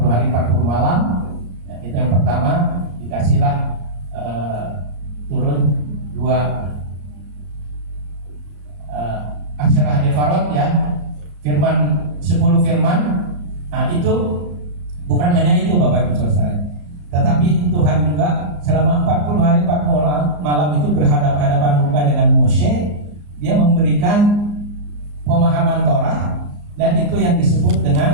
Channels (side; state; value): left; late; 34 ms